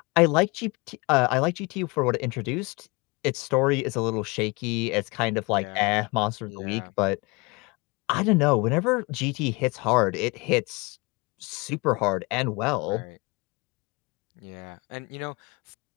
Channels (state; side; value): quieter; right; 27.0 dB